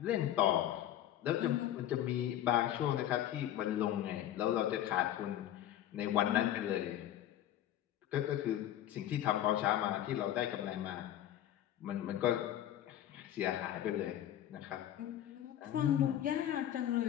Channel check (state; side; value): quieter; right; 11.9 dB